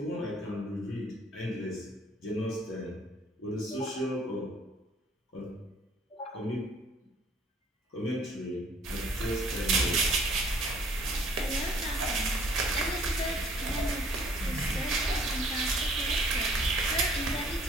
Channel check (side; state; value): both; normal; correlation 0.58